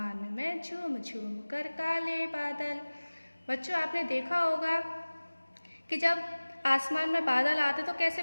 में, झूम झूम कर काले बादल। बच्चों, आपने देखा होगा कि जब आसमान में बादल आते तो कैसे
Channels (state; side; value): inverted; both; correlation -1.00